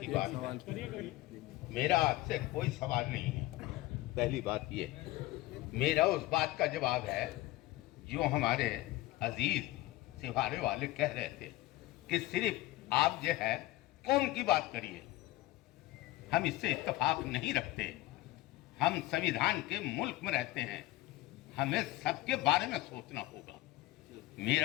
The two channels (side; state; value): right; quieter; 17.5 dB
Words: बात है। मेरा आपसे कोई सवाल नहीं है। पहली बात ये, मेरा उस बात का जवाब है जो हमारे अजीज सिवारे वाले कह रहे थे कि सिर्फ आप जो है कौम की बात करिए। हम इससे इत्तेफाक नहीं रखते। हम संविधान के मुल्क में रहते हैं, हमें सबके बारे में सोचना होगा।